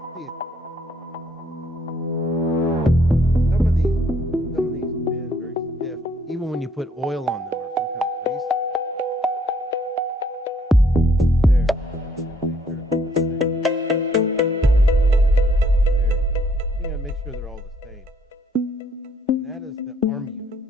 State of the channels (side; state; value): both; normal; correlation 0.65